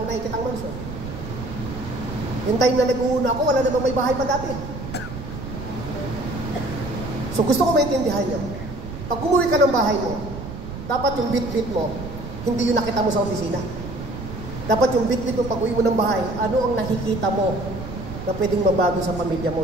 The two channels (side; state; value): right; noise; rumble, 10 dB below the sound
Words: nakikitang mansion. Yung time na nag-uuna ako, wala namang may bahay pa dati. So gusto ko maintindihan nyo. Pag umuwi ka ng bahay mo, dapat yung bit-bit mo, hindi yung nakita mo sa opisina. Dapat yung bit-bit mo pag uwi mo ng bahay, ano ang nakikita mo na pwedeng mabago sa pamilya mo